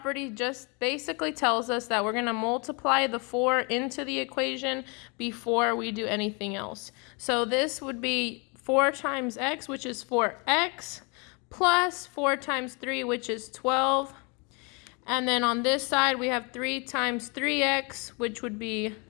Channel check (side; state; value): right; quieter; 31.9 dB